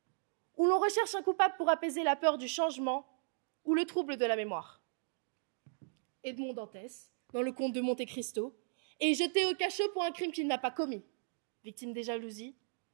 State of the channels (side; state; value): left; silent; digital silence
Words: où l'on recherche un coupable pour apaiser la peur du changement ou le trouble de la mémoire. Edmond Dantès, dans le Comte de Monte Cristo, est jeté au cachot pour un crime qu'il n'a pas commis, victime des jalousies